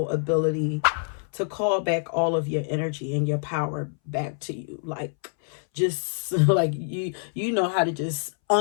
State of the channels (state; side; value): silent; right; 61 dB below the other